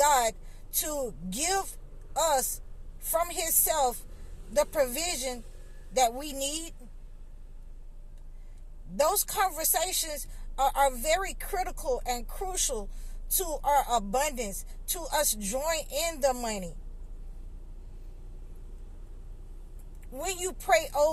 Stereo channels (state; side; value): identical; both; correlation 1.00